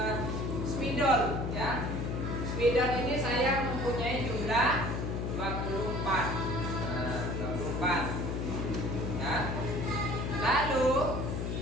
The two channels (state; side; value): noise; left; hum, 2 dB below the sound